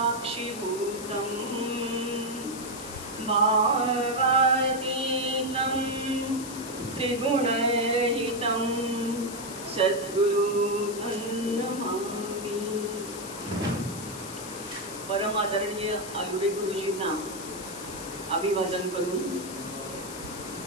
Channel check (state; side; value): noise; left; hiss, 11 dB below the sound